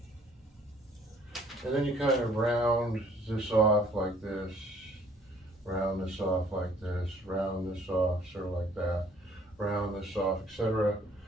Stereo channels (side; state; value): both; normal; correlation 0.59